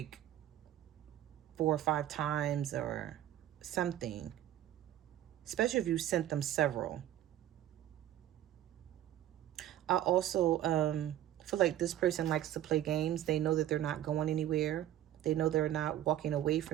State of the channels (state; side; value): quieter; left; 12.3 dB